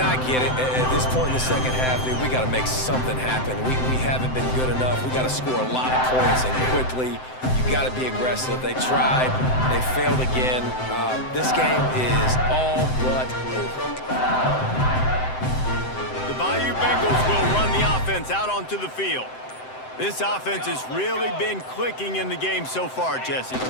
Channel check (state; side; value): late; right; 7.8 ms